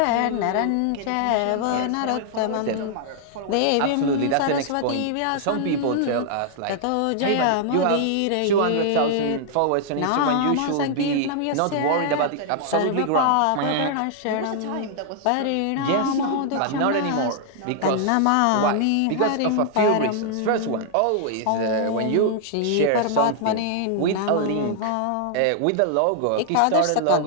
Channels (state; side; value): different; both; correlation -0.01